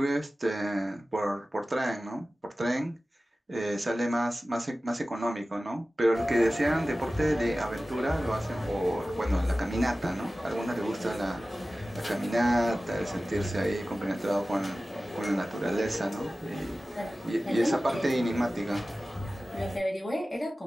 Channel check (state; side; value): normal; both; correlation 0.96